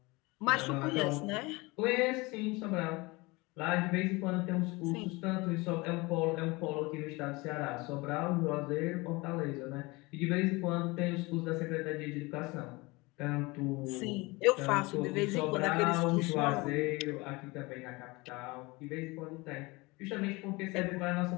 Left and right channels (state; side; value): quieter; right; 24.0 dB